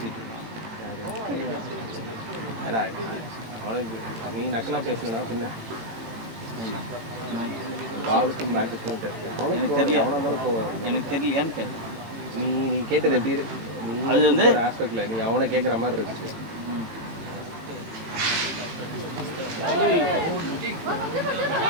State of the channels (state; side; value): late; left; 18 ms